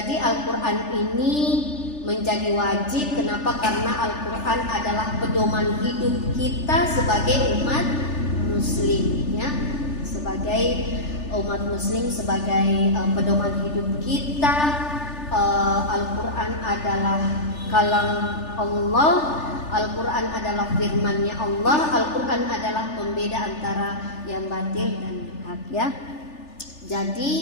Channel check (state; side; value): late; right; 3.4 ms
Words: Al-Quran ini menjadi wajib. Kenapa? Karena Al-Quran adalah pedoman hidup kita sebagai umat muslim, ya. Sebagai umat muslim, sebagai pedoman hidup kita. Al-Quran adalah kalam Allah, Al-Quran adalah firman-Nya Allah, Al-Quran adalah pembeda antara yang batil dan yang hak, ya. Jadi